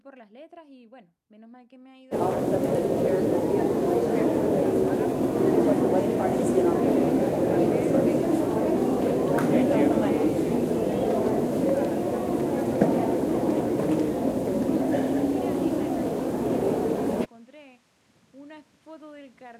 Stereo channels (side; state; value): both; identical; correlation 1.00